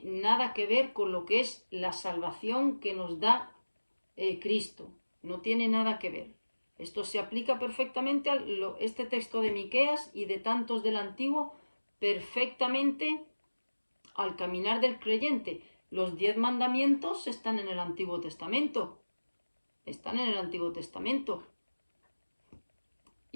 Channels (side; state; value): both; inverted; correlation -1.00